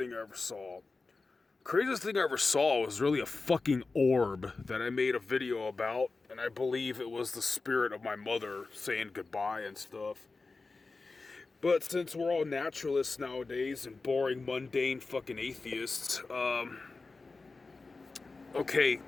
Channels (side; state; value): right; quieter; 3.9 dB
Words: I ever saw. Craziest thing I ever saw was really a fucking orb that I made a video about, and I believe it was the spirit of my mother saying goodbye and stuff. But since we're all naturalists nowadays and boring, mundane fucking atheists, okay,